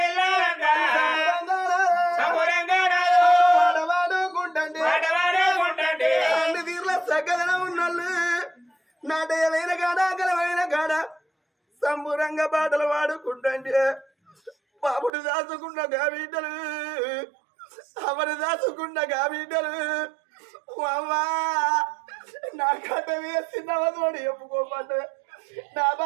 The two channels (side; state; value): left; drops out; at 15.1 s